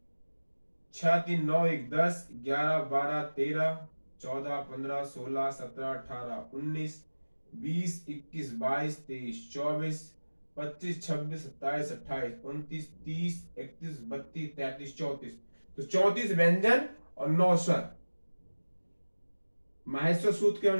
6 3 9 1 10 11 12 13 14 15 16 17 18 19 20 21 22 23 24 25 26 27 28 29 30 31 32 33 34, तो 34 व्यंजन और 9 स्वर। माहेश्वर सूत्र के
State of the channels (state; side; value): inverted; both; correlation -1.00